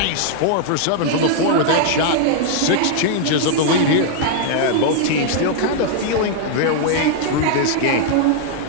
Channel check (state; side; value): different; both; correlation -0.01